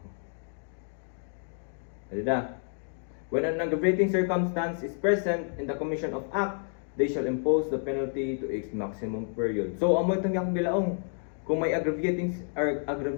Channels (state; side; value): silent; right; 58 dB below the other